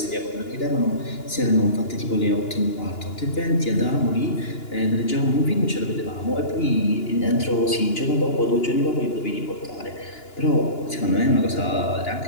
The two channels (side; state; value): right; late; 2.9 ms